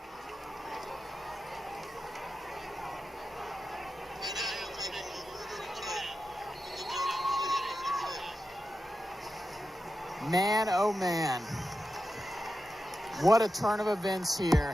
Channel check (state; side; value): normal; both; correlation 0.90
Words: Man, oh man. What a turn of events